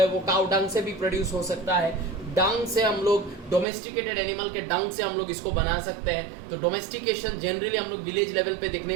वो काउ डंग से भी प्रोड्यूस हो सकता है। डंग से हम लोग, डोमेस्टिकेटेड एनिमल के डंग से हम लोग इसको बना सकते हैं। तो डोमेस्टिकेशन जनरली हम लोग विलेज लेवल पे देखने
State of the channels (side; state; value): left; drops out; at 3.7 s